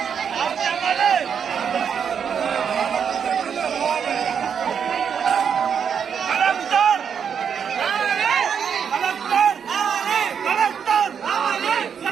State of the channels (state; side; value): quieter; left; 7.3 dB